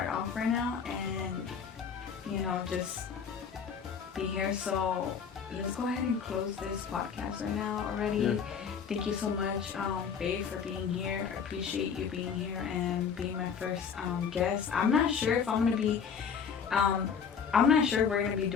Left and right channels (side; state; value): right; quieter; 6.7 dB